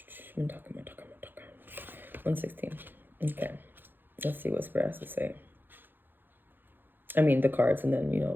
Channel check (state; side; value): late; left; 0.095 ms